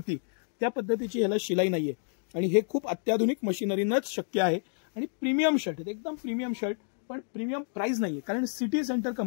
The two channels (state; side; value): silent; right; 58 dB below the other